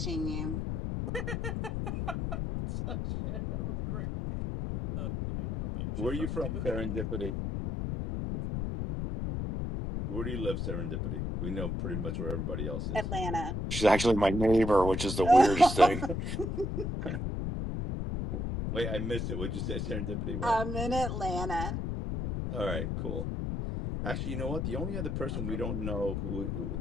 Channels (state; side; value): noise; left; rumble, 2 dB below the sound